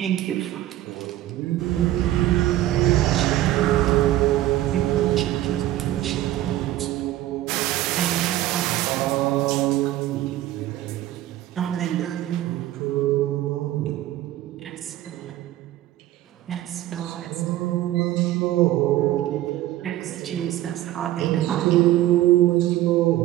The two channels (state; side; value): quieter; left; 14.6 dB